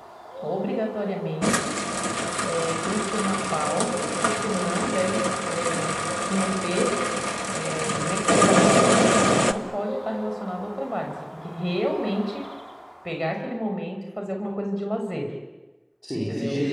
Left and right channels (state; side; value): identical; both; correlation 1.00